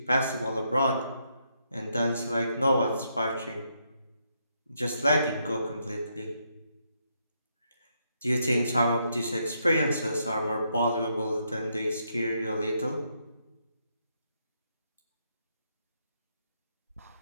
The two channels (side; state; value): both; inverted; correlation -0.77